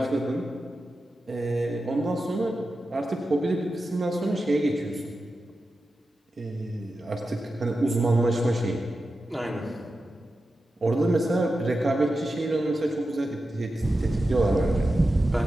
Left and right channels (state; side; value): normal; both; correlation 0.91